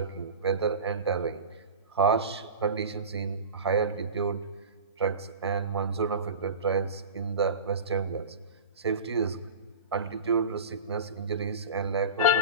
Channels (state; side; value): inverted; both; correlation -0.32